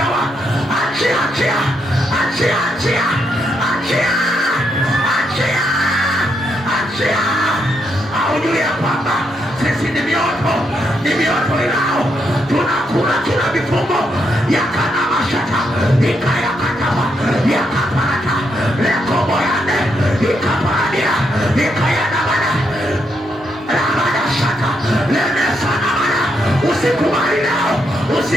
achia, achia, achia, achia, achia, achia, achia. Aujue ya kwamba sisi ni mioto ilao, tunakula kila vifungo. Yakana mashata, ikayakataba, yakapata, lekoboyane, ikaparadia, ikayadabana, ramada shata, lemesana mana. Usikubali nao,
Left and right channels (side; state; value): both; normal; correlation 0.79